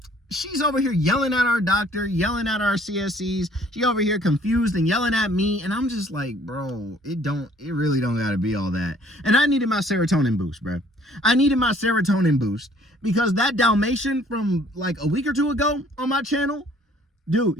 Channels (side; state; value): both; normal; correlation 0.58